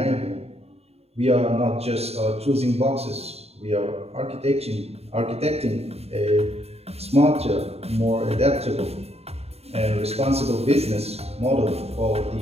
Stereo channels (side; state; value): left; late; 0.30 ms